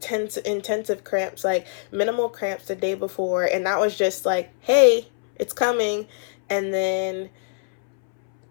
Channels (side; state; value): right; silent; 63 dB below the other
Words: cramps, like minimal cramps the day before, and that was just like, hey, it's coming, and then